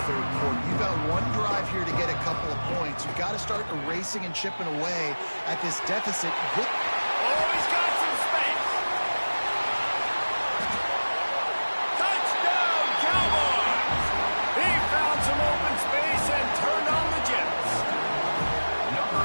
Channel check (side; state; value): both; inverted; correlation -1.00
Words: third quarter. You've got one drive here to get a couple of points. You've got to start erasing and chipping away at this deficit. Oh, he's got some space. Touchdown, Cowboys! He found some open space and turned on the Jets.